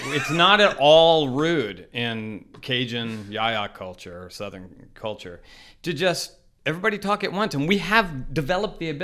it's not at all rude in Cajun yaya culture or Southern culture to just everybody talk at once. And we have developed the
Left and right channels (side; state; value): both; identical; correlation 1.00